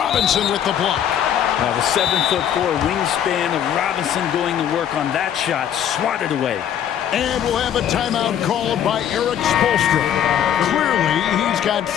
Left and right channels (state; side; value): quieter; right; 9.7 dB